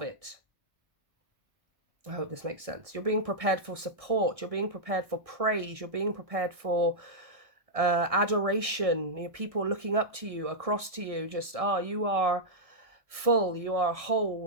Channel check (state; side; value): late; left; 1.6 ms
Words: it. I hope this makes sense. You're being prepared for support. You're being prepared for praise. You're being prepared for adoration. You know, people looking up to you, across to you, just, oh, you are full, you are